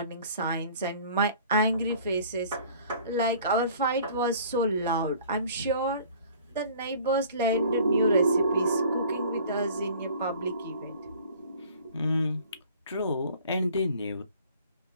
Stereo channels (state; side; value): inverted; both; correlation -0.50